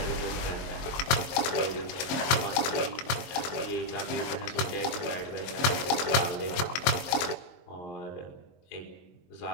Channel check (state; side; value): late; right; 23 ms